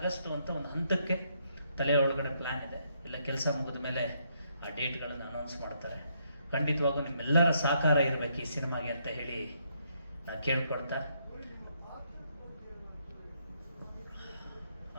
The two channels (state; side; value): inverted; both; correlation -0.74